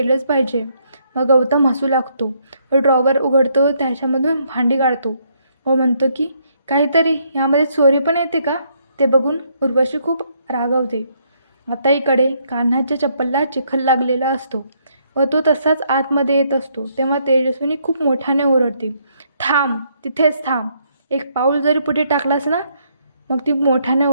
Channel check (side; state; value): both; inverted; correlation -0.72